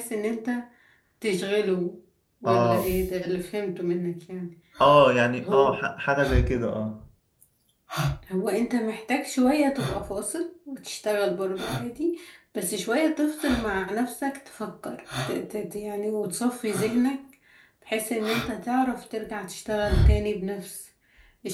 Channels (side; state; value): both; identical; correlation 1.00